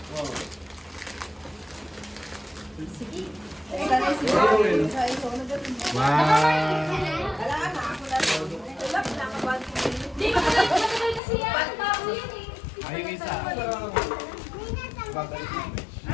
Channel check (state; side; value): drops out; right; at 11.2 s